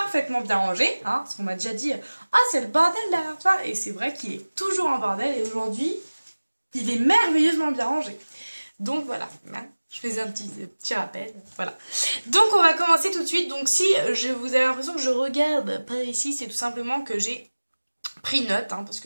bien rangé, hein, parce qu'on m'a déjà dit ah c'est le bordel derrière toi, et c'est vrai qu'il est toujours en bordel, et aujourd'hui il est merveilleusement bien rangé. Donc voilà, je faisais un petit rappel, voilà. Donc on va commencer tout de suite. Donc si vous avez l'impression que je regarde par ici, c'est tout simplement que j'ai pris note, hein, parce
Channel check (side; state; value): both; inverted; correlation -1.00